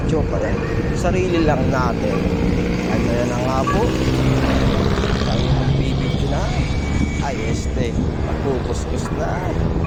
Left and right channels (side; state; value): both; identical; correlation 1.00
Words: kaya sarili lang natin. At kaya na nga po, tayo magbibideo na. Ay magkukuskus na.